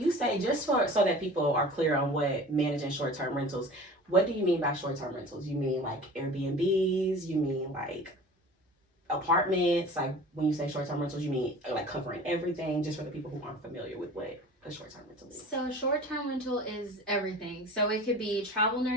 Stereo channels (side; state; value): both; normal; correlation 0.40